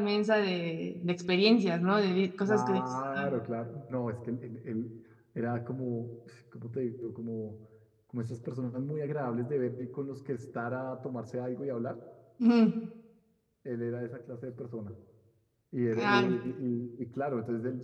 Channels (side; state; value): both; identical; correlation 1.00